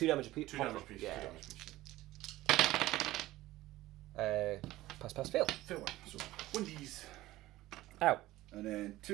damage apiece. 2 damage piece. Yeah. 2 damage piece. Pass, fail. Fail one. So 1Ds. Ow. And then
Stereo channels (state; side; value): quieter; left; 16.8 dB